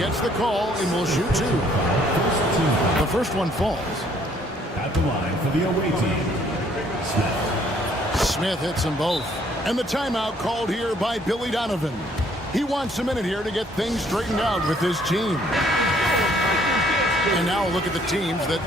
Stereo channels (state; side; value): normal; both; correlation 0.63